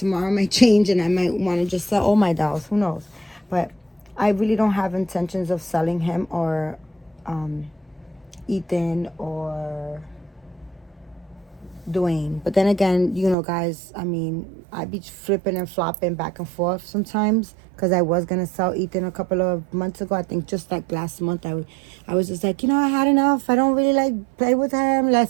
might change and I might want to just sell all my dolls. Who knows? But I really don't have intentions of selling him or Ethan or Dwayne. But then again, you know, guys, I mean, I'd be flipping and flopping back and forth sometimes because I was going to sell Ethan a couple of months ago. I think just like last month, I was just like, I had enough. I don't really like play with him. Let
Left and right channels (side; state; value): left; drops out; at 13.4 s